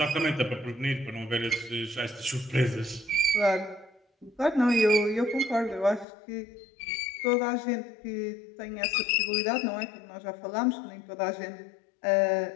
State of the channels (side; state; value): right; drops out; at 6.1 s